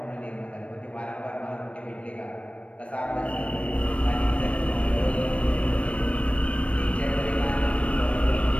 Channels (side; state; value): right; late; 0.062 ms